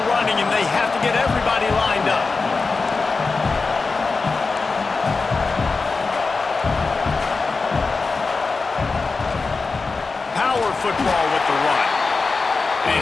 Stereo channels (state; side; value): quieter; right; 4.2 dB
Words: running, and they have to get everybody lined up. Power football with the run. And